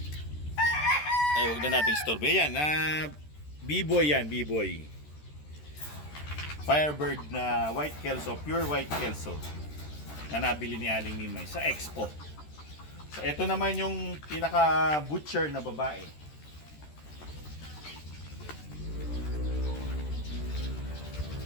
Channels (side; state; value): right; late; 13 ms